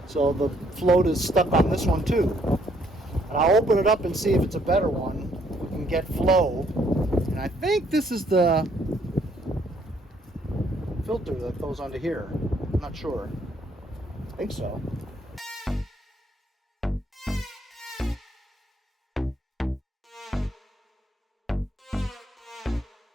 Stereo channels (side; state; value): both; normal; correlation 0.68